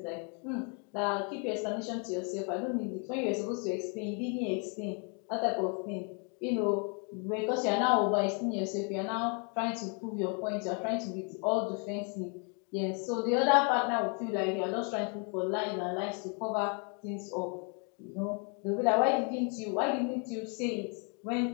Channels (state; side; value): quieter; right; 37.7 dB